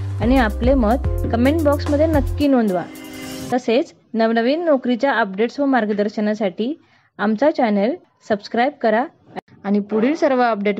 आणि आपले मत कमेंट बॉक्समध्ये नक्की नोंदवा। तसेच नवनवीन नोकरीच्या अपडेट्स व मार्गदर्शनासाठी आमचा चॅनल सबस्क्राइब करा आणि पुढील सर्व अपडेट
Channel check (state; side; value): identical; both; correlation 1.00